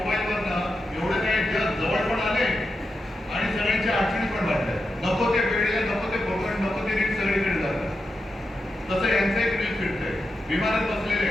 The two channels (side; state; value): both; normal; correlation 0.88